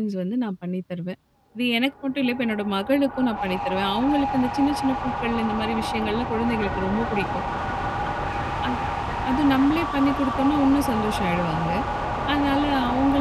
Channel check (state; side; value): identical; both; correlation 1.00